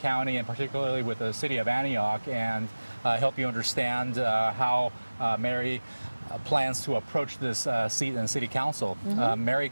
and particularly with the City of Antioch, and help you understand how Mary plans to approach this seat in City Council. Mary,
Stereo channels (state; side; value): inverted; both; correlation -1.00